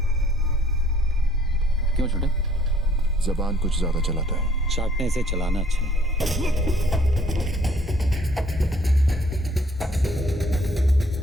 क्यों छोटे? जबान कुछ ज्यादा चलाता है। चाटने से चलाना अच्छा है।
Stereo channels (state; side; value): normal; both; correlation 0.61